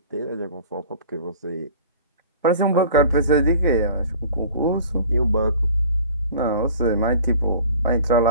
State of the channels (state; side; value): inverted; both; correlation -0.44